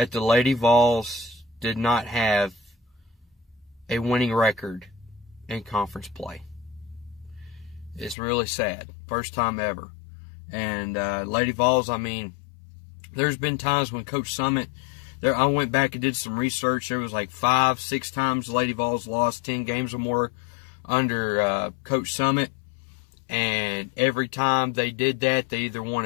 the Lady Vols did not have a winning record in conference play. It's really sad. First time ever. And Lady Vols, I mean, there's been times when Coach Summit, I went back and did some research. There was like 5-6 times Lady Vols lost 10 games or more under Coach Summit. And every time they did that, they either won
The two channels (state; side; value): drops out; right; at 8.2 s